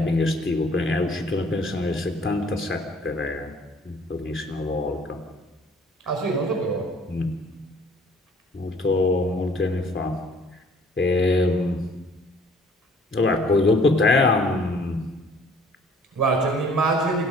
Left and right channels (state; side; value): normal; both; correlation 0.56